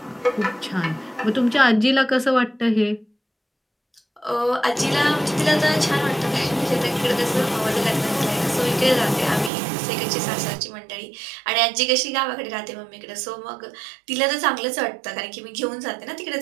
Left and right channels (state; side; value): drops out; left; at 9.5 s